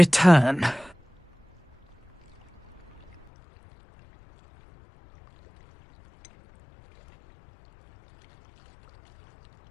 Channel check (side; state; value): right; drops out; at 3.3 s